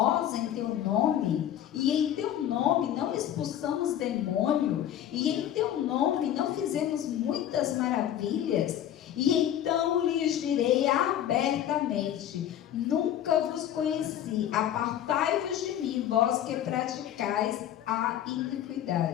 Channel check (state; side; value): quieter; right; 11.0 dB